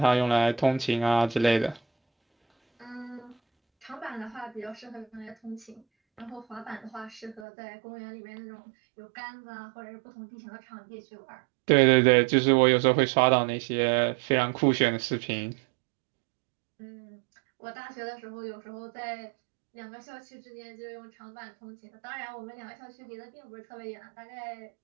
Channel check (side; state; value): left; drops out; at 7.5 s